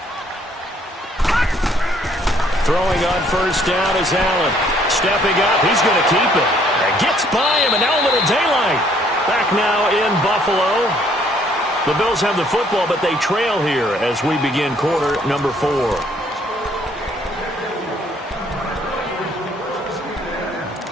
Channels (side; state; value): both; normal; correlation 0.64